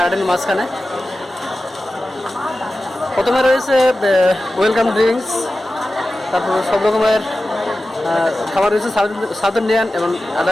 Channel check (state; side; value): normal; both; correlation 0.94